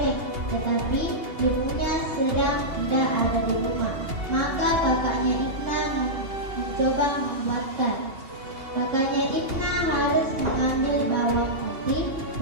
tetapi ibunya sedang tidak ada di rumah. Maka kakaknya Ibna mencoba membuatkan. Kakaknya Ibna harus mengambil bawang putih,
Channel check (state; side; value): late; left; 2.8 ms